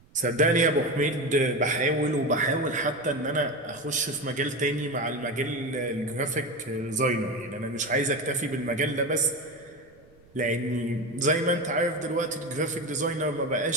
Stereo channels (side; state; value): right; noise; rumble, 28 dB below the sound